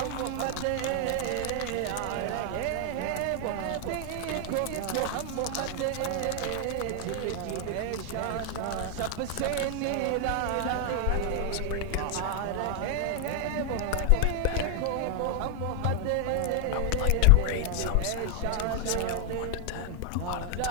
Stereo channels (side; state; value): both; different; correlation 0.00